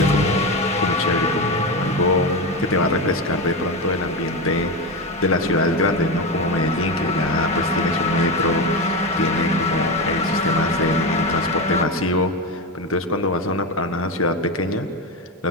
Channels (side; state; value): both; normal; correlation 0.16